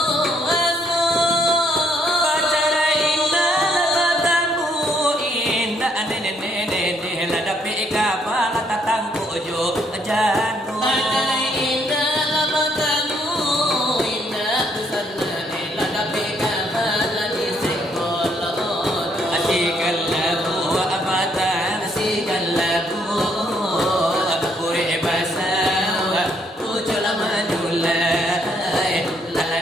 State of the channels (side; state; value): both; normal; correlation 0.70